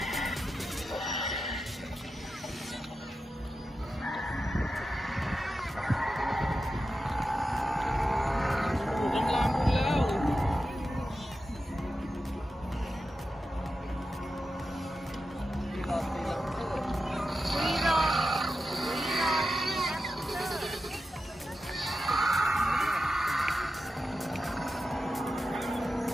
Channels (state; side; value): normal; both; correlation 0.91